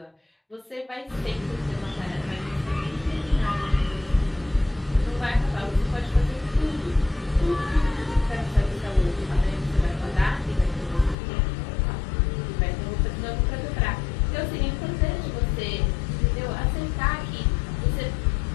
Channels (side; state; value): right; drops out; at 11.2 s